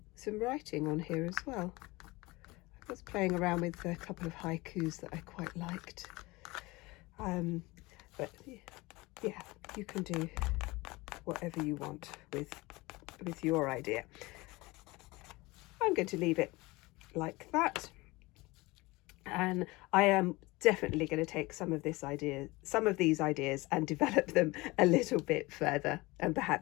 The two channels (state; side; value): quieter; right; 22.3 dB